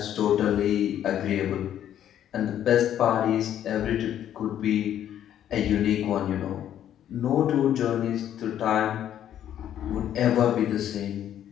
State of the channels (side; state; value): right; quieter; 10.7 dB